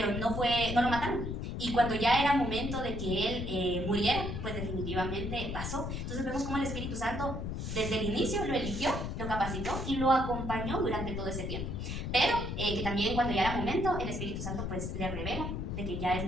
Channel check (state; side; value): noise; left; rumble, 4 dB below the sound